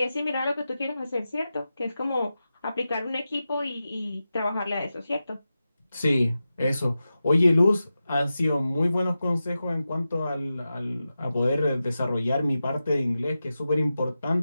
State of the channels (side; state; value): both; inverted; correlation -0.92